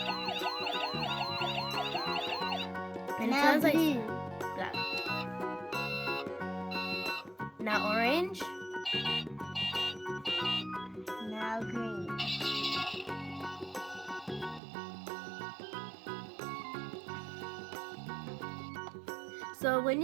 And it Now sounds like blue. black. Now orange. Now green. So when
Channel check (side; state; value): left; drops out; at 14.6 s